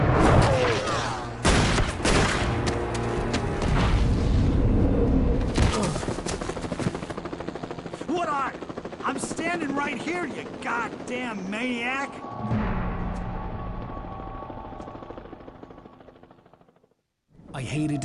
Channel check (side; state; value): both; identical; correlation 1.00